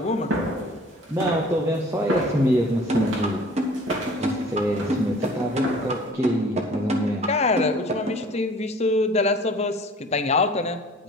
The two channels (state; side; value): normal; both; correlation 0.49